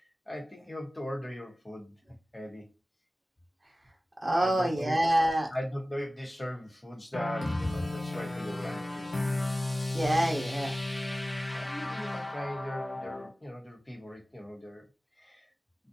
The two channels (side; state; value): both; normal; correlation 0.97